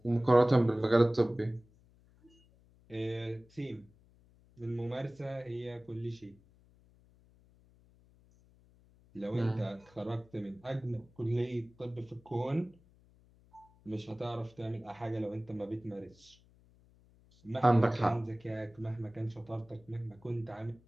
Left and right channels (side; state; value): left; noise; hum, 29 dB below the sound